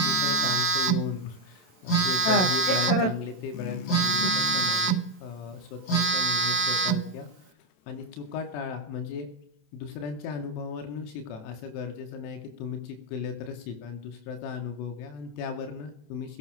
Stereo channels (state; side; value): late; right; 27 ms